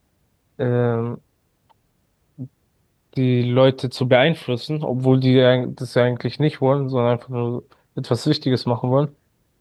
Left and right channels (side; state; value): both; identical; correlation 1.00